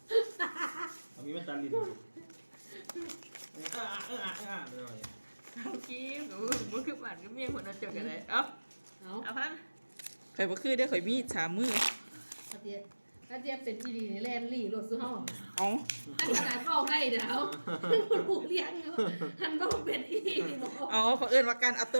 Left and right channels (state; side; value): inverted; both; correlation -1.00